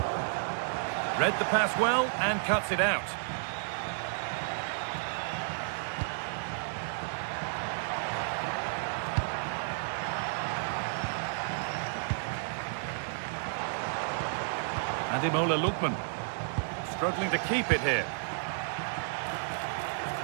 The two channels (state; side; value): silent; left; 56 dB below the other